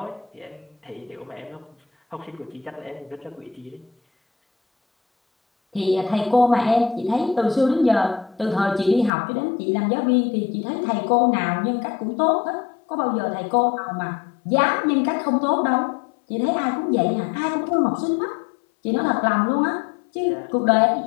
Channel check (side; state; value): right; drops out; at 9.1 s